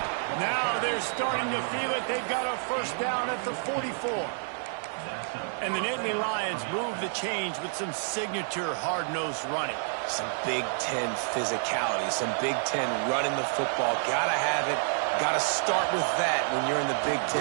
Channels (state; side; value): silent; left; 59 dB below the other